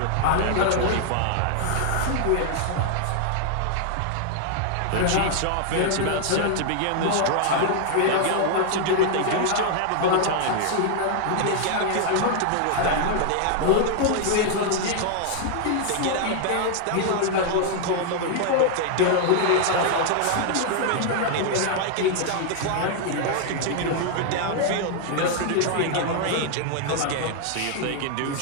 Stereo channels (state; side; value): different; both; correlation 0.00